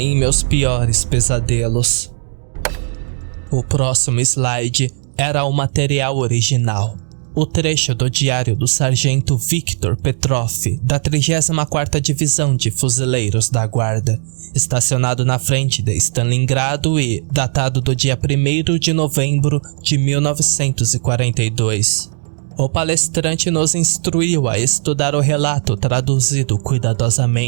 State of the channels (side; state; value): left; silent; digital silence